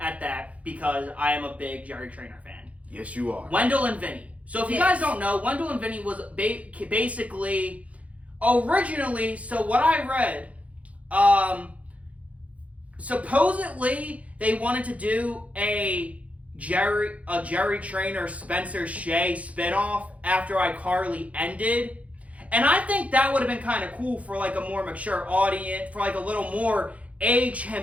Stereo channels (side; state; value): left; late; 0.066 ms